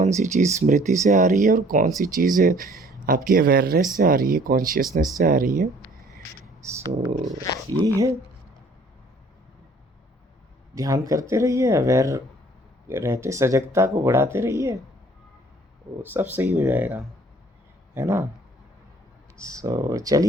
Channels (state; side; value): normal; both; correlation 0.56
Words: सी चीज़ स्मृति से आ रही है और कौन सी चीज़ आपकी अवेयरनेस से आ रही है, कॉन्शियसनेस से आ रही है। सो यही है, ध्यान करते रहिए, अवेयर रहते, सजगता को बढ़ाते रहिए, वो सब सही हो जाएगा, है ना। सो